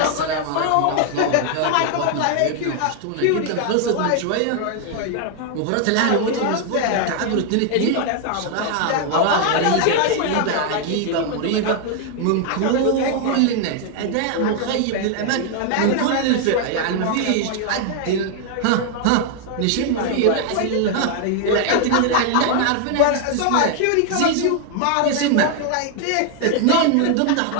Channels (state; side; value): different; both; correlation 0.00